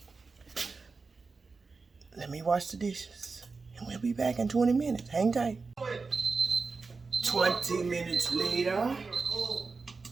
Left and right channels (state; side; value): quieter; left; 4.3 dB